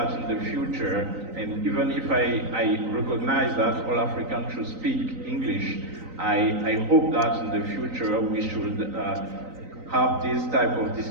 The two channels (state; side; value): late; left; 3.9 ms